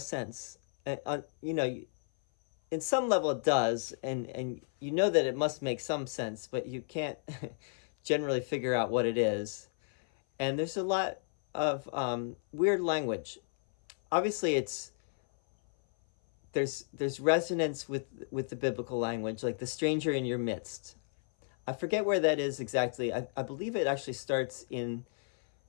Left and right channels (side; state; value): right; silent; 56 dB below the other